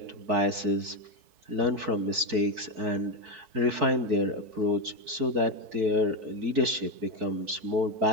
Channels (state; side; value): late; left; 4.6 ms